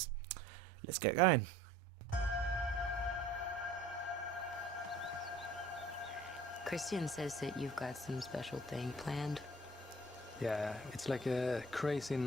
Let's get going. Christian says that you've got some special thing planned. Yeah, it's like a crazy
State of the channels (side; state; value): both; normal; correlation 0.50